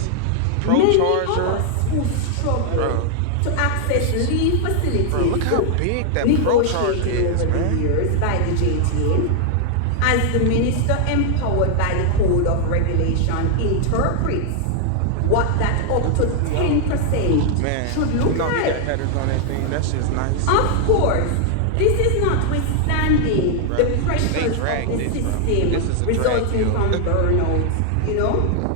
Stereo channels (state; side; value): different; both; correlation 0.00